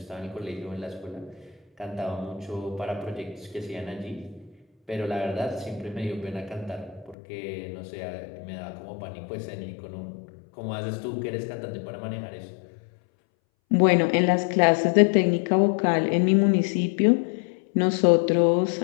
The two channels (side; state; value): right; drops out; at 7.2 s